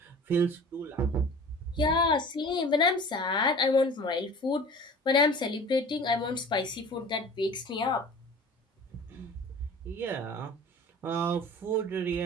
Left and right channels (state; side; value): normal; both; correlation 0.42